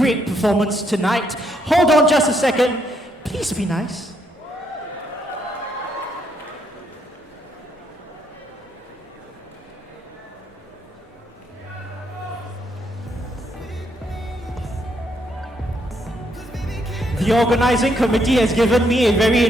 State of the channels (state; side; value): normal; both; correlation 0.75